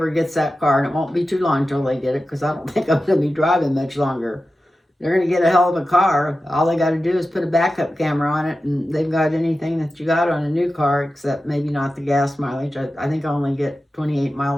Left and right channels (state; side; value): normal; both; correlation 0.93